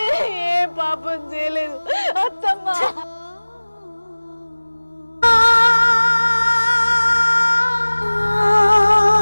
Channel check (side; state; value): both; inverted; correlation -1.00